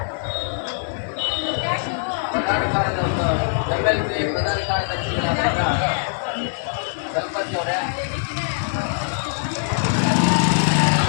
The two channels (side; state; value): right; silent; digital silence